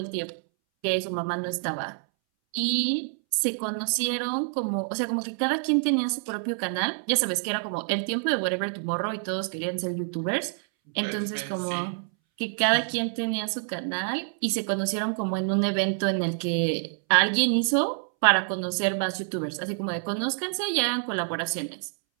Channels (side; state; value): left; silent; 60 dB below the other